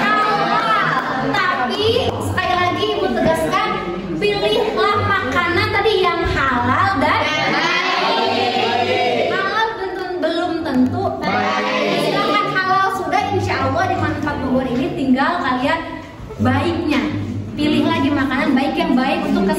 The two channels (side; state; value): both; identical; correlation 1.00